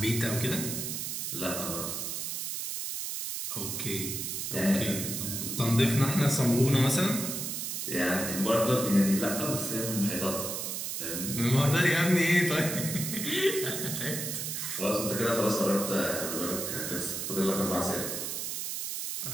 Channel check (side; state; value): right; noise; hiss, 3 dB below the sound